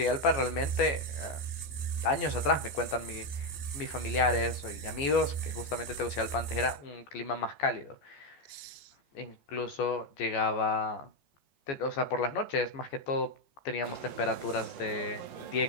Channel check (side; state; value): right; late; 14 ms